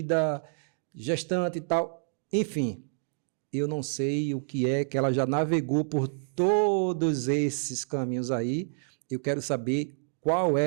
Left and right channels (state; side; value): silent; left; digital silence